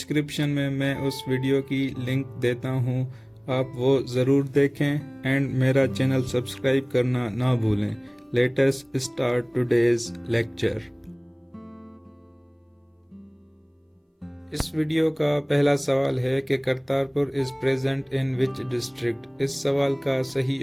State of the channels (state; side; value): identical; both; correlation 1.00